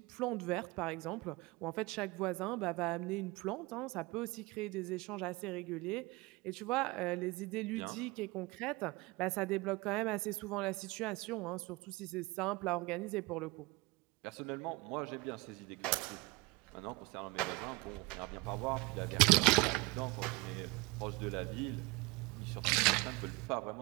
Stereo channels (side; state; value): left; quieter; 23.9 dB